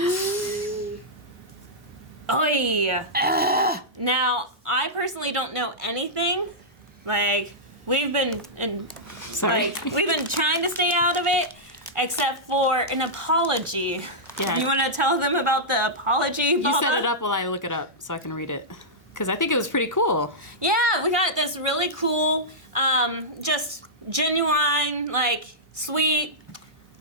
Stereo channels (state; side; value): normal; both; correlation -0.11